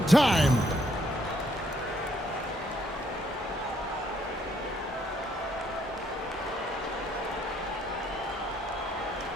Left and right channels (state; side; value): normal; both; correlation 0.69